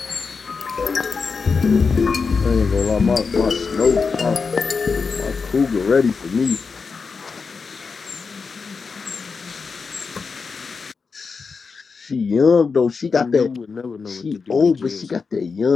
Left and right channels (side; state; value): right; quieter; 5.0 dB